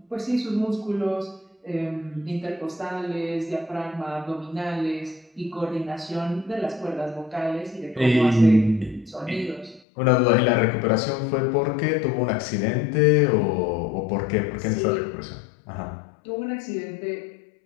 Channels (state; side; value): drops out; right; at 9.8 s